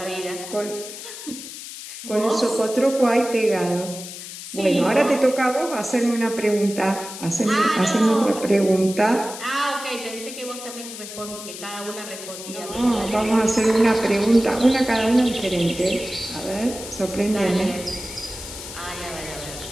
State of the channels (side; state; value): left; noise; hiss, 11 dB below the sound